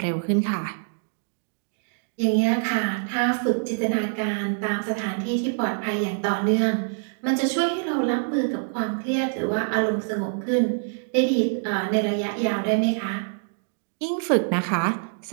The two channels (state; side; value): silent; left; digital silence